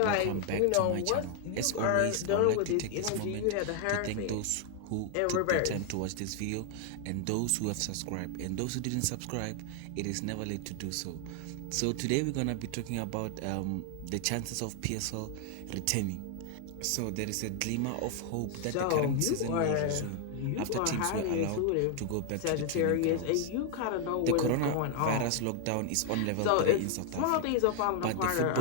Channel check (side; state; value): both; different; correlation 0.00